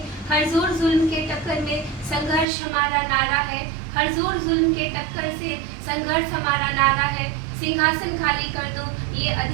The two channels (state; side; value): drops out; left; at 2.5 s